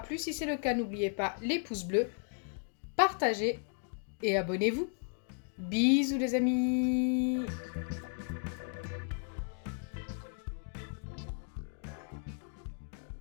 Si c'est le cas, n'oubliez pas les pouces bleus, partagez et abonnez-vous. Bisous les amis!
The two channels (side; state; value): right; silent; 55 dB below the other